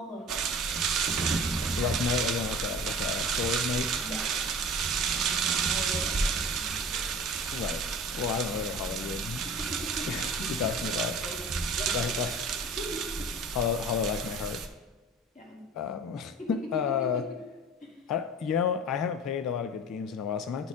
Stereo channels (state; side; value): normal; both; correlation 0.39